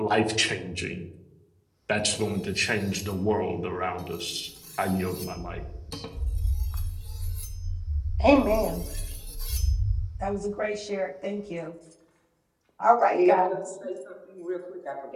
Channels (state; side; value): identical; both; correlation 1.00